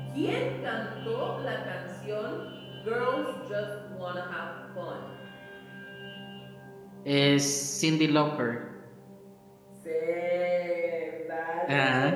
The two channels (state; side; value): identical; both; correlation 1.00